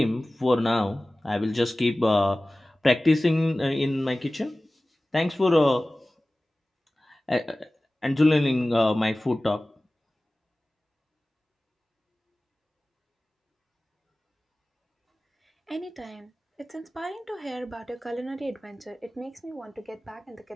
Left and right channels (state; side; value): normal; both; correlation 0.97